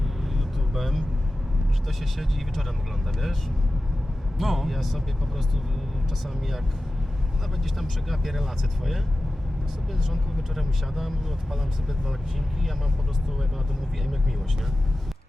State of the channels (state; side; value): normal; both; correlation 0.95